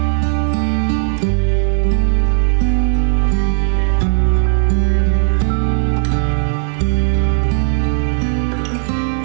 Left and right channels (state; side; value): silent; left; 64 dB below the other